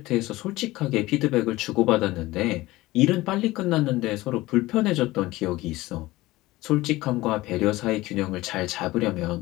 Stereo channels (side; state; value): right; quieter; 18.7 dB